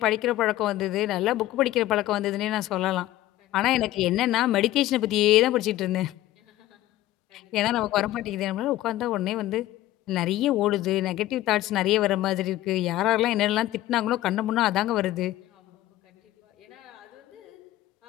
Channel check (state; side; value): quieter; right; 15.2 dB